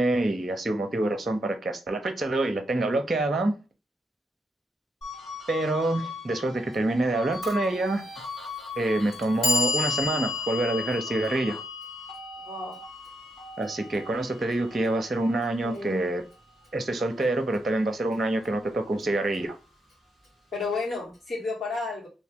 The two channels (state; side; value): normal; both; correlation 0.79